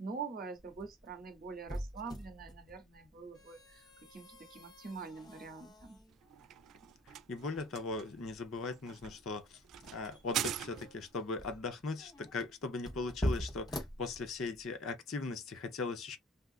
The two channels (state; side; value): normal; both; correlation 0.48